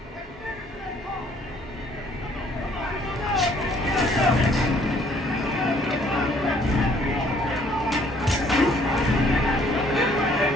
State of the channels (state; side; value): normal; both; correlation 0.61